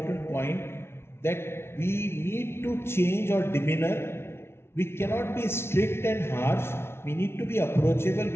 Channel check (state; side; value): late; right; 0.12 ms